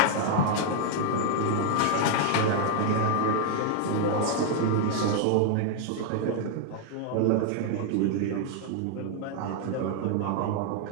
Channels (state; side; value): different; both; correlation 0.00